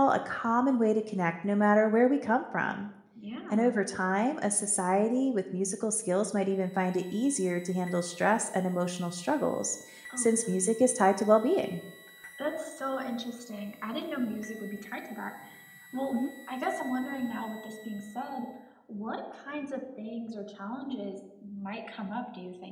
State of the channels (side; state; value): both; identical; correlation 1.00